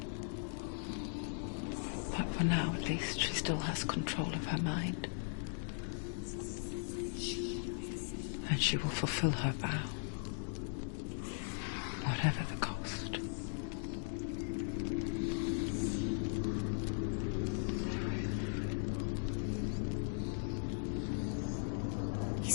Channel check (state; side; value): silent; right; digital silence